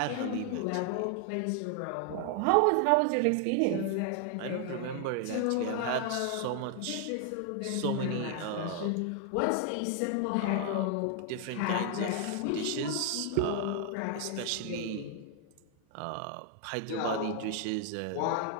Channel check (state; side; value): different; both; correlation 0.00